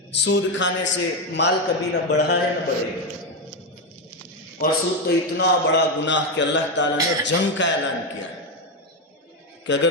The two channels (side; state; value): both; normal; correlation 0.09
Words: سود کھانے سے مال کبھی نہ بڑھا ہے نہ بڑھے گا، اور سود تو اتنا بڑا گناہ کہ اللہ تعالیٰ نے جنگ کا اعلان کیا ہے کہ اگر